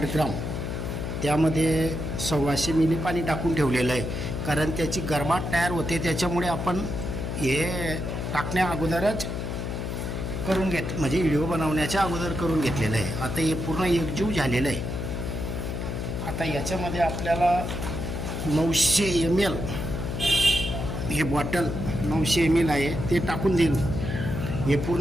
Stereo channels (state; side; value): noise; left; hum, 4 dB below the sound